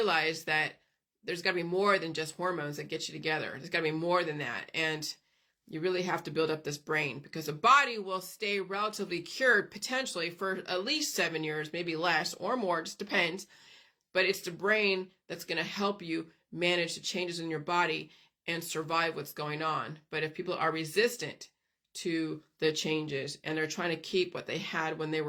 that there's got to be more than just hormones that get you together. There's got to be more than that. And you really have to build up this brain, because the body will stay relatively cured potentially for at least 7 years, maybe less or more, just depends. But it's the brain that's going to help you manage the changes in your body and survive what's going on. But if people are resistant to the changes and they're trying to keep what they had when they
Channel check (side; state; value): both; identical; correlation 1.00